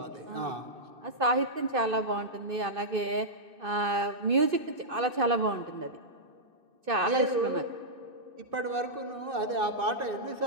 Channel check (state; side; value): late; left; 2.6 ms